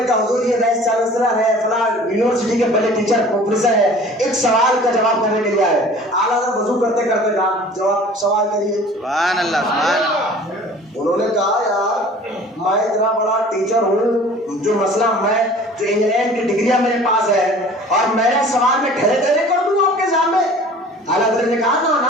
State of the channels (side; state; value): both; normal; correlation 0.46